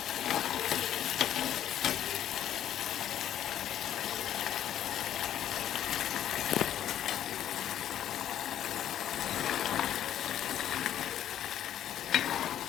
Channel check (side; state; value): right; quieter; 11.0 dB